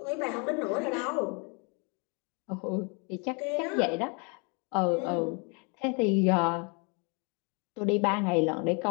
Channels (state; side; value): quieter; right; 34.2 dB